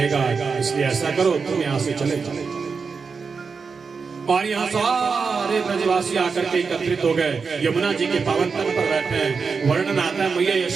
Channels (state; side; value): quieter; left; 5.2 dB